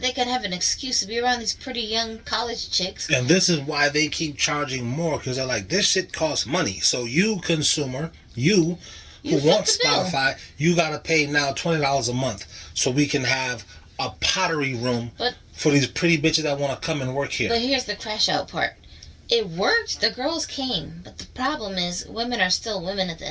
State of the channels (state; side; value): identical; both; correlation 1.00